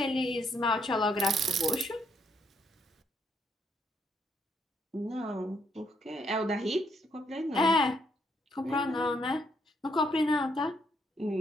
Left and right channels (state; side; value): normal; both; correlation 0.73